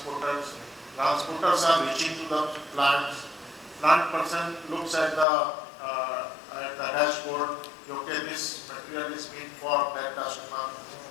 Transporters are reaching to the plants. Plant person looks at the dashboard, okay, this material is meant for that customer,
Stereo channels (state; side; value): drops out; right; at 5.2 s